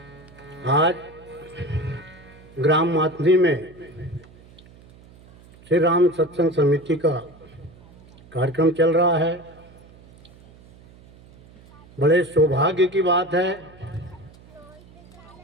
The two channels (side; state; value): right; noise; hum, 24 dB below the sound